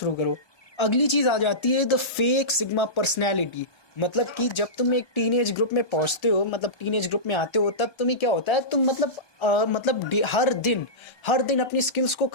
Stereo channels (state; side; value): late; right; 1.7 ms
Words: करो। अगली चीज़ आ जाती है द फेक सिग्मा पर्सनैलिटी। मतलब कि जब तुम एक टीनेज ग्रुप में पहुंचते हो, मतलब टीनेज ग्रुप में आते हो, तब तुम्हें क्या होता है, तुम मतलब हर दिन अपनी स्किल्स को